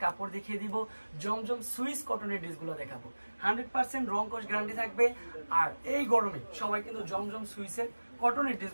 কাপড় দেখিয়ে দিব। জমজম সুইস কটনের ড্রেসগুলো দেখাবো। 100% রং কস গ্যারান্টি থাকবে। আর এই গরমে সবাই কিন্তু জমজম সুইসের কটনের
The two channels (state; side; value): inverted; both; correlation -1.00